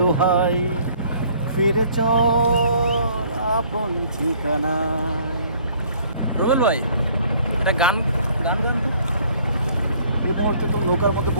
ফিরে চল আপন ঠিকানায়। রুবেল ভাই, একটা গান গান গান তো। এই মুহূর্তে তো নৌকার মধ্যে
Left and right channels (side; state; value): both; inverted; correlation -0.59